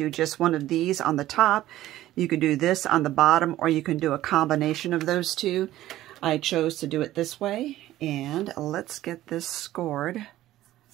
just one of these on the top. You could do this on the bottom, or you can do a combination of those two. I chose to do it this way, and let's get this scored.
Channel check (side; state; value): left; quieter; 14.7 dB